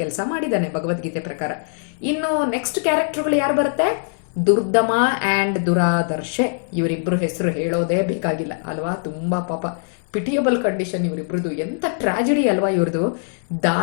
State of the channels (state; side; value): silent; right; digital silence